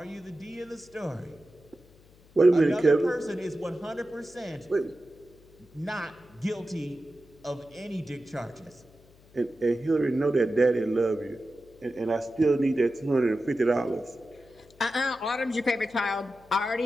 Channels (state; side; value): noise; left; hum, 27 dB below the sound